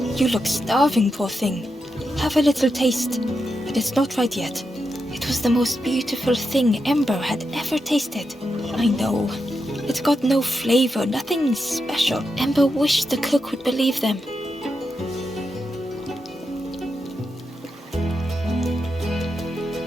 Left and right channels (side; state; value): both; normal; correlation 0.86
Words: "You look starving, poor thing. Have a little taste, but it's not right yet." It was the most beautiful thing Ember had ever tasted. I know. It got no flavor, nothing special. Ember wished the cook would believe them.